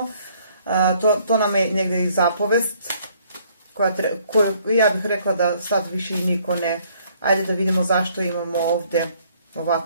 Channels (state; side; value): inverted; both; correlation -0.64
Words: to nam je negdje i zapovest, koju ja bih rekla da sad više i niko ne. Ajde da vidimo zašto imamo ovdje